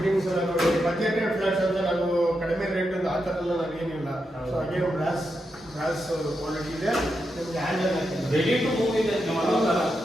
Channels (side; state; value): both; normal; correlation 0.86